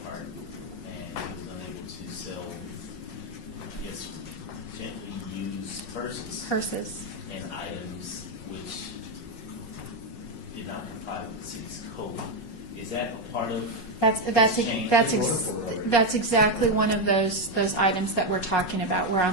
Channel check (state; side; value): late; right; 5.5 ms